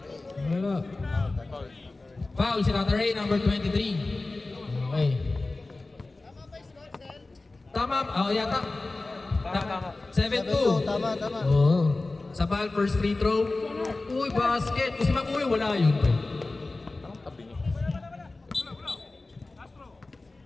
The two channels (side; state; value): right; quieter; 3.2 dB